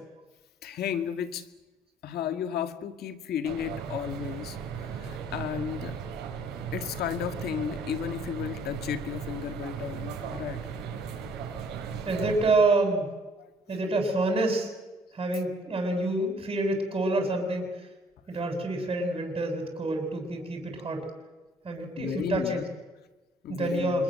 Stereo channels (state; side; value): normal; both; correlation 0.58